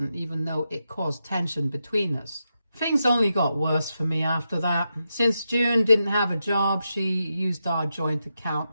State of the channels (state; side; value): inverted; both; correlation -0.87